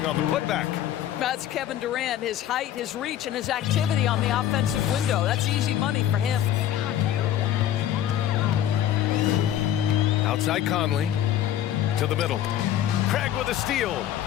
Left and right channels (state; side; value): quieter; right; 11.4 dB